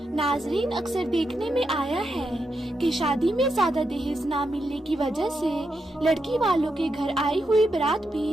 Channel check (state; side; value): normal; both; correlation 0.84